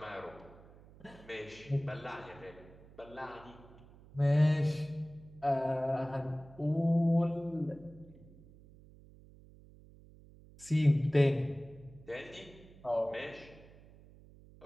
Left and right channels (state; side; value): noise; right; hum, 22 dB below the sound